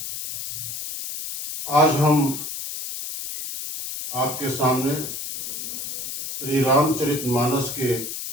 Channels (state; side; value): noise; left; hiss, 6 dB below the sound